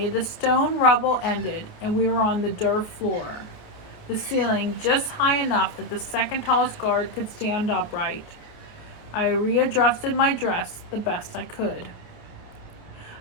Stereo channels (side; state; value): right; late; 28 ms